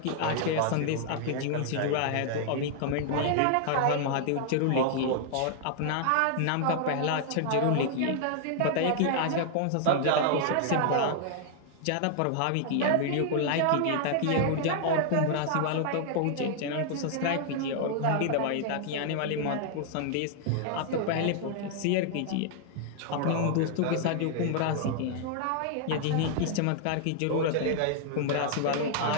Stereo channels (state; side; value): different; both; correlation 0.00